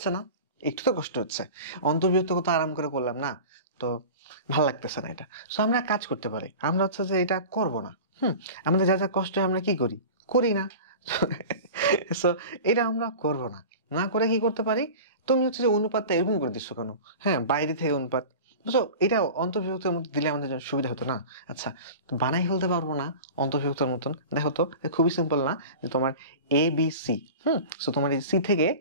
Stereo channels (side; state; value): both; inverted; correlation -0.34